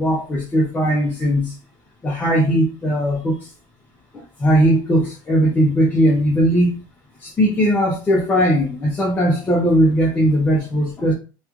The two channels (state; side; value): normal; both; correlation 0.62